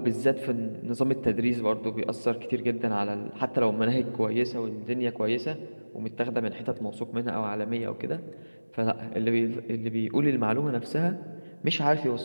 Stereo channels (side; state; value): both; inverted; correlation -1.00